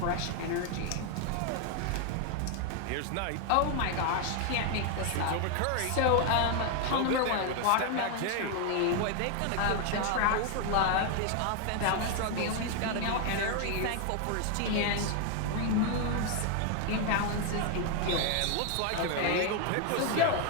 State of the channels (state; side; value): different; both; correlation 0.01